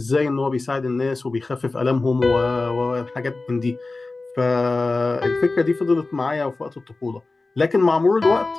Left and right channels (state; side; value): quieter; right; 3.4 dB